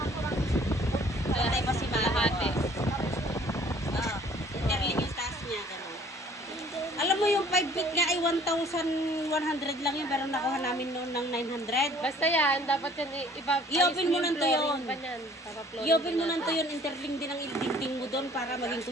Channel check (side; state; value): both; normal; correlation 0.55